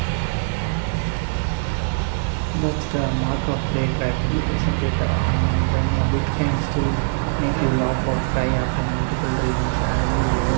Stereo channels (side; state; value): left; silent; digital silence